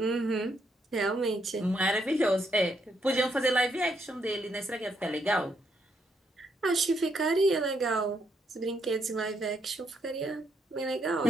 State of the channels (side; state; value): both; normal; correlation 0.76